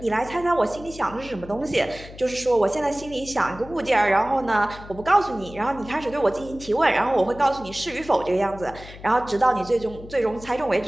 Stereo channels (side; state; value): left; noise; hum, 16 dB below the sound